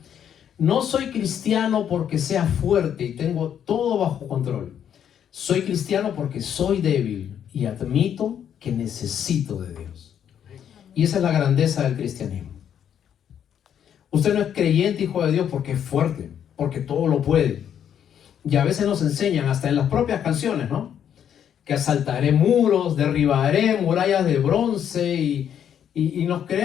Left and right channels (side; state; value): right; quieter; 9.1 dB